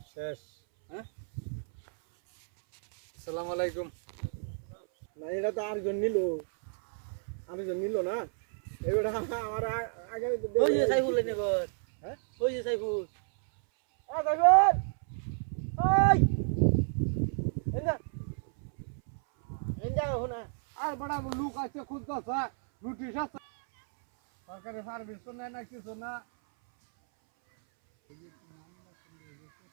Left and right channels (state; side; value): silent; left; 57 dB below the other